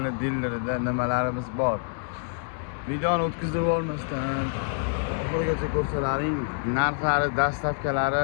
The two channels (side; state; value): right; silent; digital silence